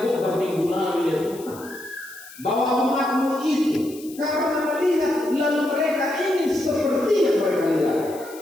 minggu lalu ya Tuhan, bahwa umat-Mu itu karena melihat lalu mereka ingin seperti yang mereka lihat.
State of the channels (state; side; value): noise; left; hiss, 19 dB below the sound